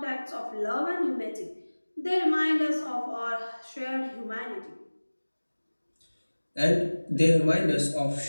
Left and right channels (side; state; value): both; inverted; correlation -1.00